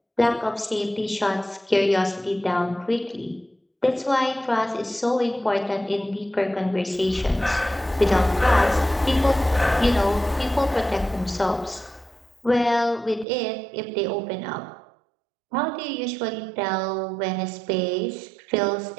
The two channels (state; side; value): drops out; left; at 13.2 s